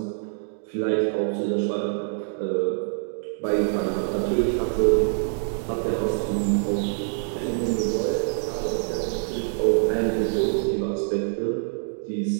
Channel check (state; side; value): silent; left; digital silence